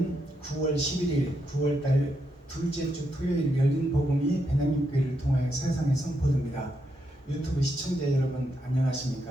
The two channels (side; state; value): both; normal; correlation 0.81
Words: 9월 11일 9월달 둘째 주 토요일 열린 복음이 베냐민교회를 통하여 세상에 선포됩니다. 유튜브 시청자 여러분